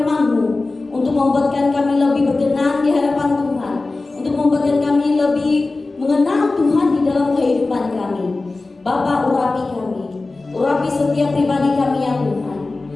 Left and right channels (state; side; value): quieter; right; 3.4 dB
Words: untuk membuatkan kami lebih berkenan di hadapan Tuhan, untuk membuatkan kami lebih mengenal Tuhan di dalam kehidupan kami. Bapa, urapi setiap pribadi kami ya Tuhan.